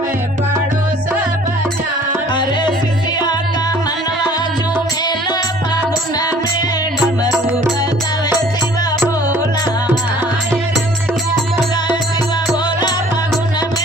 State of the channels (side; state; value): both; normal; correlation 0.53